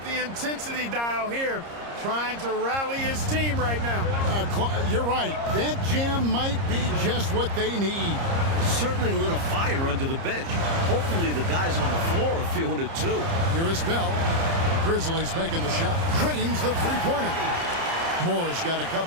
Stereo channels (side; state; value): left; late; 30 ms